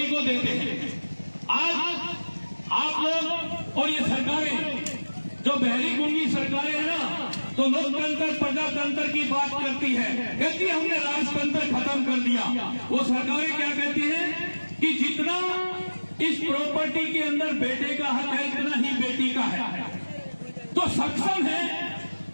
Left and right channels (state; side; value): inverted; both; correlation -1.00